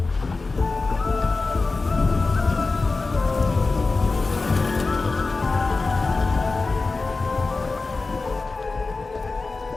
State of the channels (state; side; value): quieter; right; 3.8 dB